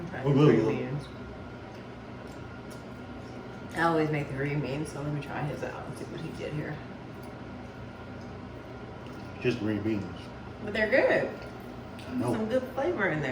Oh, good, Green good. beans. I always make the green beans, so let me try his out and see what he did here. Just green beans. But they're good. I know. Some good flavor in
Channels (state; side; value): identical; both; correlation 1.00